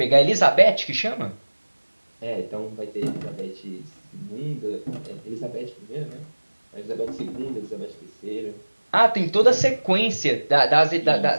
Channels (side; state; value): both; inverted; correlation -1.00